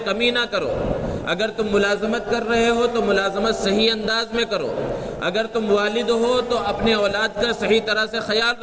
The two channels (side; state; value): both; identical; correlation 1.00